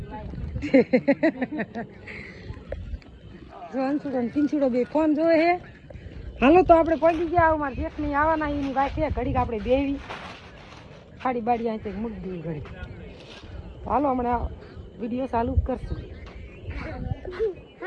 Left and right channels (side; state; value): both; identical; correlation 1.00